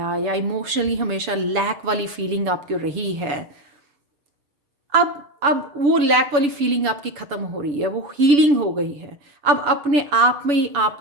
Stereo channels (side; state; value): left; late; 7.0 ms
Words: या इमोशनली हमेशा लैक वाली फीलिंग आपकी रही है, अब वो लैक वाली फीलिंग आपकी ख़त्म हो रही है, वो हीलिंग हो गई है। अब अपने आप में ही